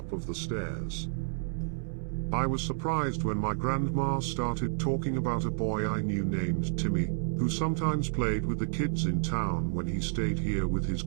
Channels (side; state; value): left; silent; 58 dB below the other